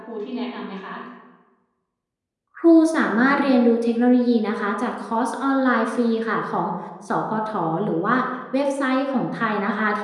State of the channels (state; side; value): identical; both; correlation 1.00